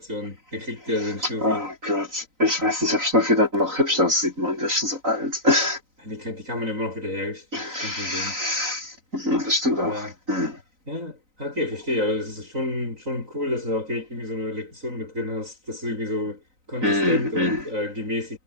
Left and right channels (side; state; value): left; late; 3.9 ms